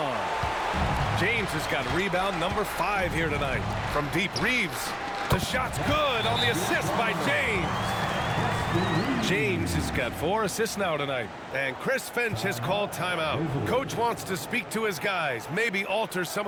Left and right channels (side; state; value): both; identical; correlation 1.00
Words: James has got rebound number 5 here tonight. From deep, Reeves. The shot's good on the assist by James. James has got 4 assists now tonight. And Chris Finch has called timeout. Coach wants to speak to his guys, maybe alter some